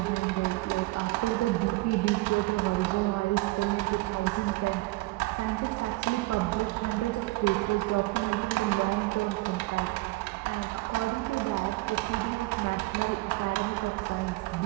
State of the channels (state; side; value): quieter; left; 21.6 dB